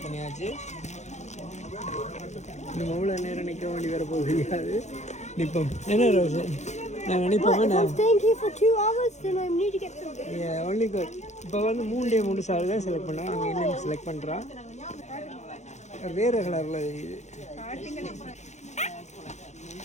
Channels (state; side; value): late; right; 0.33 ms